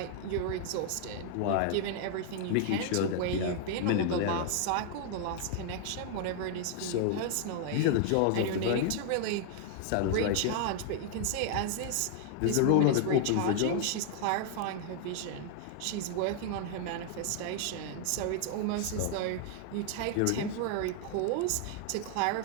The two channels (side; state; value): both; different; correlation 0.00